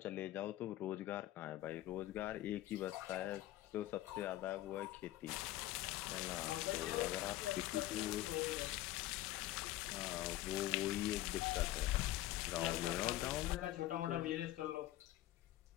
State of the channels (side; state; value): right; quieter; 15.4 dB